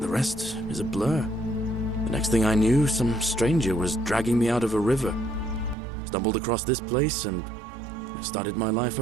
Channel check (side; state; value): left; drops out; at 5.8 s